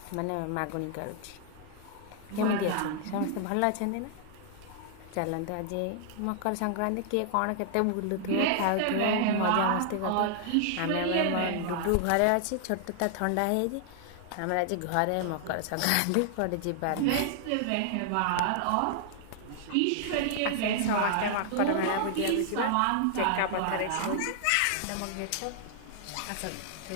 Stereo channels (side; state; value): both; different; correlation -0.01